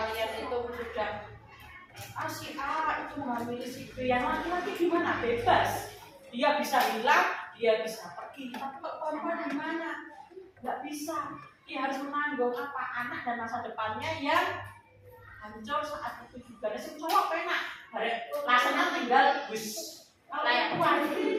itu sudah si A itu menghamili si B, yang laki-laki gimana? Bebas, dia bisa hilang, dia bisa pergi. Tapi kok perempuan gimana? Nggak bisa. dia harus menanggung apa anak dan masa depannya yang hancur saat itu juga. Sing cowok penak, rasanya tinggal bus kayak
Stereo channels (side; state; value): both; identical; correlation 1.00